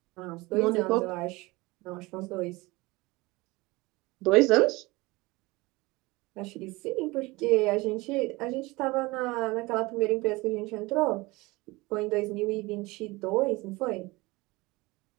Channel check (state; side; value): quieter; left; 22.5 dB